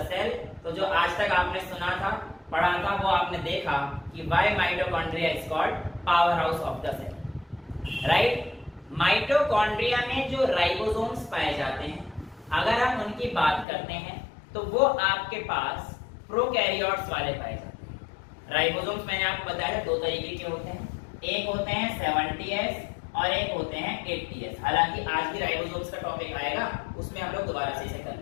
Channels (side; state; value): right; drops out; at 13.7 s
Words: cell. तो जो आज तक आपने सुना था, पढ़ा था, वो आपने देखा कि why mitochondria is called power house of the cell, right. Mitochondria में जो राइबोसोम्स पाए जाते हैं, अगर हम उनकी बात करते हैं तो वो आपके पास प्रोकैरियोट्स वाले पाए जाते हैं। राइबोसोम्स मैंने आपको बताया दो तरीके के होते हैं, एक होते हैं 70S और एक होते हैं 80S। हालांकि आज भी राइबोसोम्स का टॉपिक आएगा, उसमें हम लोग दोबारा से इसे